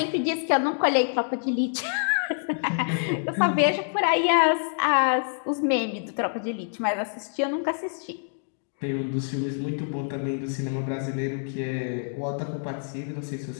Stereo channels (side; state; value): right; silent; digital silence